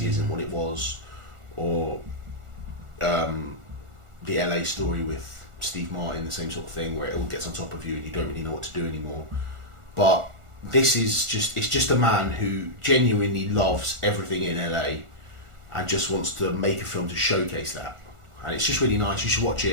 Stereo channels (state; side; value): late; left; 1.4 ms